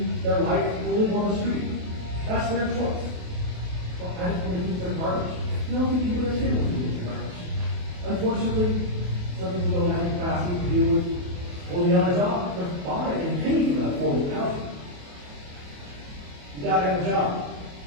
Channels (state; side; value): late; left; 28 ms